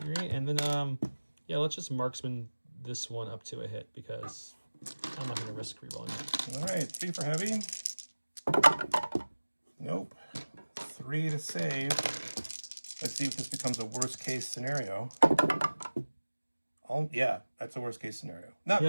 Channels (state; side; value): inverted; both; correlation -1.00